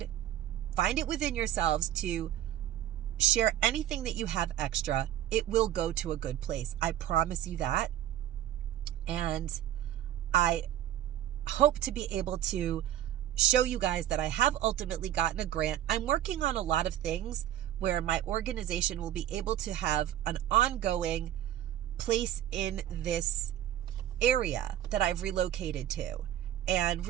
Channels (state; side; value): quieter; left; 12.0 dB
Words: find it within yourselves to share anything that you have extra, it will go to a good place. I promise you that. And I hope to be able to show you guys that I have ultimately gotten a grant. I'm working on a lot of things where my organization will be able to have an ongoing place in this area that I've relocated to and